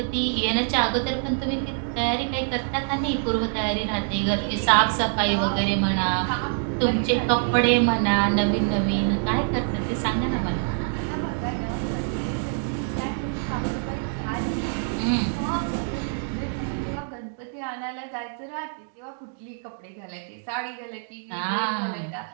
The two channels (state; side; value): silent; left; digital silence